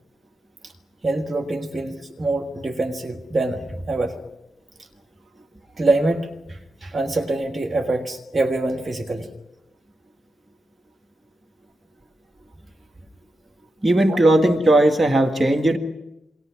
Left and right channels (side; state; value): both; normal; correlation 0.88